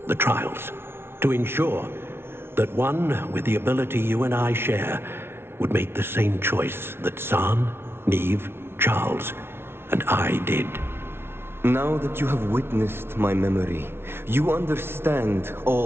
the trials. To ensure that one with the ability you and I share would make the same choice that San, Neve, Charles, and I did. Now that you have witnessed my memory, you understand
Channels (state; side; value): late; left; 0.12 ms